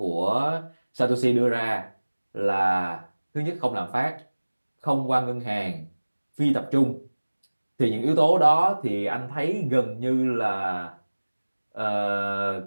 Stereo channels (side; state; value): both; inverted; correlation -1.00